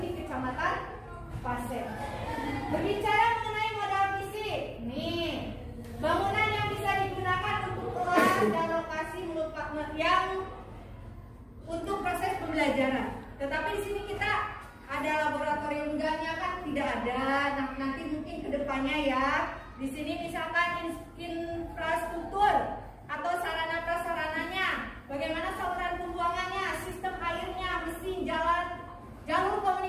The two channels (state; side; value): identical; both; correlation 1.00